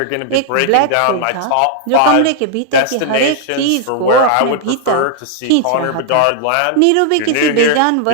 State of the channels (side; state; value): both; different; correlation 0.00